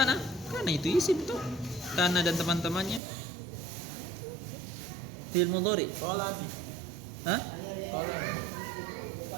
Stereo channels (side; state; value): left; drops out; at 3.0 s